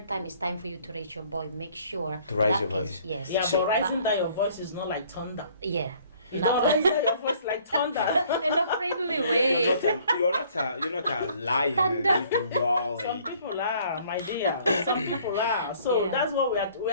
time it's time for you to raise your voice. Make sure to raise your voice. Yes. Yeah, but raising down your voice is not like thunder. Yeah. You don't raise down your voice like thunder. In a friendly way. You're not a lion. You can growl. Some people are, my dear. Some people are. So that's what we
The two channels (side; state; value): both; inverted; correlation -0.58